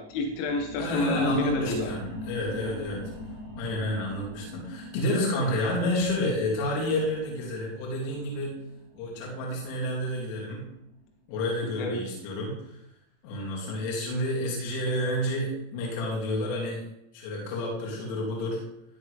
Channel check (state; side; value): late; right; 18 ms